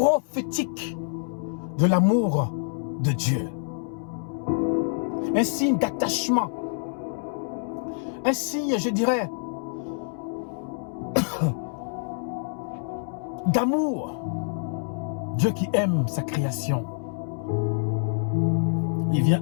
de l'amour de Dieu. Un signe d'attachement. Un signe, je dirais, d'amour. Dieu qui aime sa création. Il vient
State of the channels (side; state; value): right; silent; 61 dB below the other